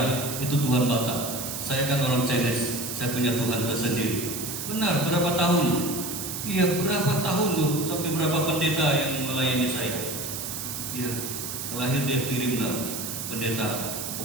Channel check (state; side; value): noise; right; hiss, 5 dB below the sound